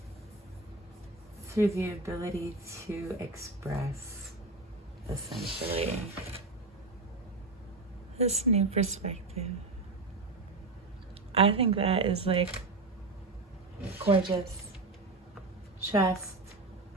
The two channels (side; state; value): left; quieter; 3.4 dB